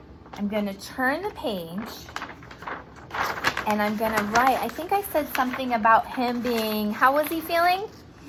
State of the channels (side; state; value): both; identical; correlation 1.00